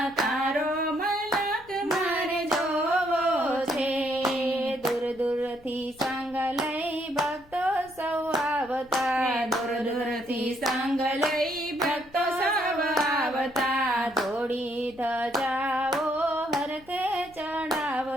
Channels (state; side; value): noise; left; rumble, 26 dB below the sound